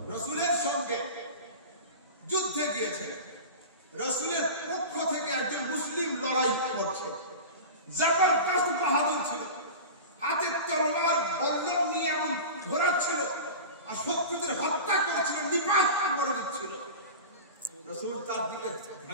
রাসূলের সঙ্গে যুদ্ধে গিয়েছে, রাসূলের পক্ষ থেকে একজন মুসলিম লড়াই করছে, জবরদস্ত বাহাদুর ছিল, হাতে তলোয়ার বল্লম নিয়ে এমন ঝোরাচ্ছিল আর শত্রুদের হত্যা করেছিল, নিপাত করে দিচ্ছিল। রাসূল তার দিকে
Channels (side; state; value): both; inverted; correlation -0.30